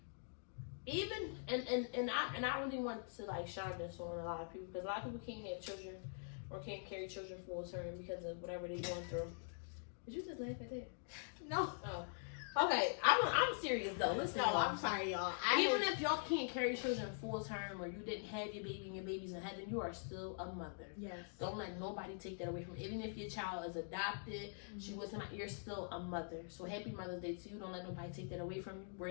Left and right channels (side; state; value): right; silent; digital silence